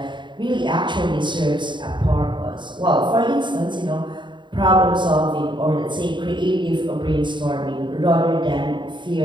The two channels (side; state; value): left; late; 0.23 ms